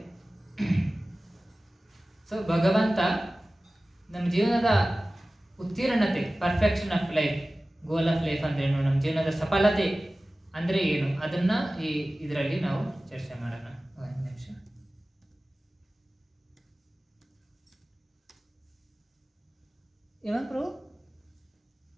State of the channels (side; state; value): both; normal; correlation 0.97